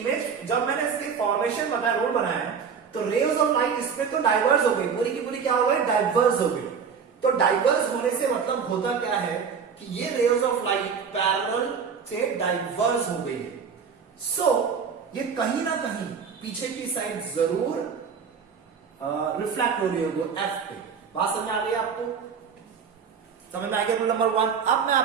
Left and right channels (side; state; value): left; quieter; 6.4 dB